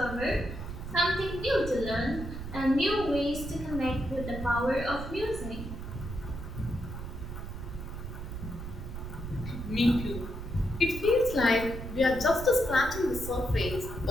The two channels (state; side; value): noise; right; rumble, 8 dB below the sound